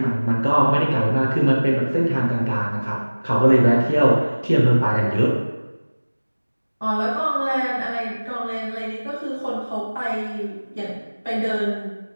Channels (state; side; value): inverted; both; correlation -1.00